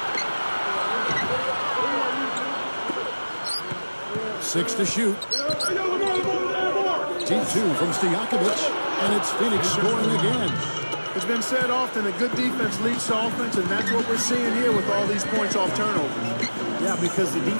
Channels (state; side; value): inverted; both; correlation -1.00